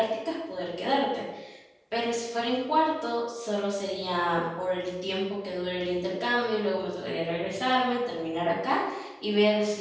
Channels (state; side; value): identical; both; correlation 1.00